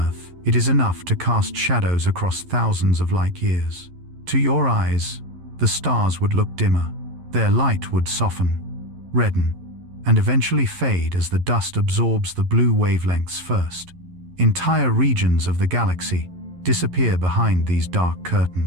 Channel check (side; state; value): left; late; 11 ms